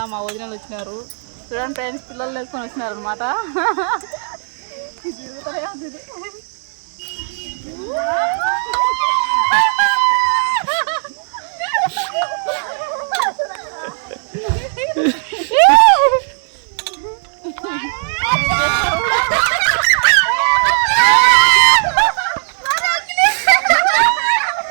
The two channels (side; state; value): left; silent; digital silence